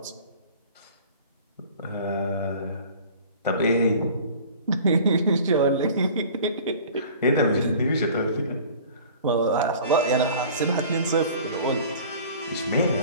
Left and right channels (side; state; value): both; inverted; correlation -0.45